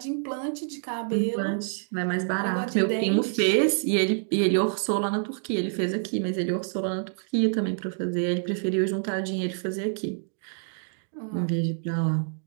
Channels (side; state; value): left; silent; digital silence